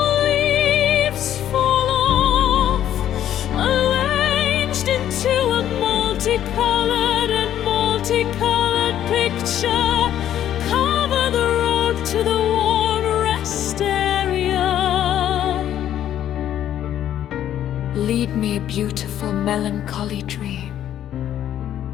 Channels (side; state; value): right; quieter; 11.2 dB